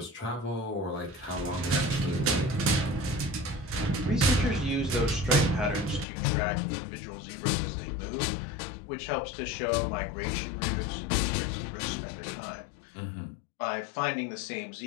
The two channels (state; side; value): drops out; right; at 6.1 s